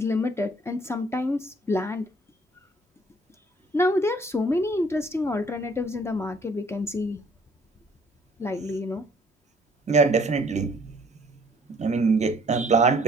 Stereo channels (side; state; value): both; normal; correlation 0.60